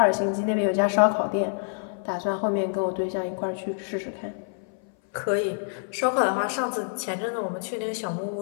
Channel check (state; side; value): silent; right; 58 dB below the other